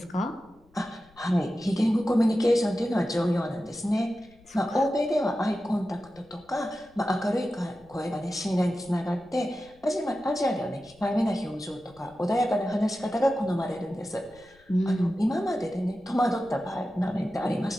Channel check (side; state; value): left; noise; rumble, 29 dB below the sound